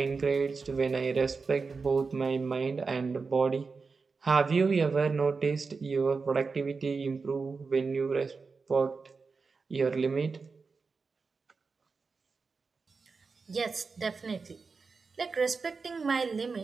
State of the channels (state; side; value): quieter; left; 4.6 dB